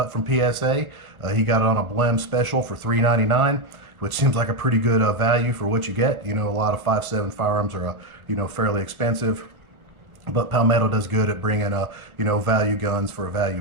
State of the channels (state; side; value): late; left; 1.2 ms